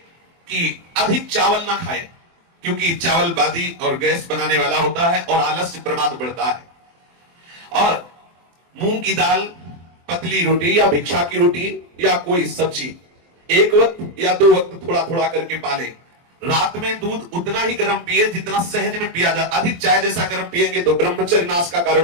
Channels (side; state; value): left; late; 23 ms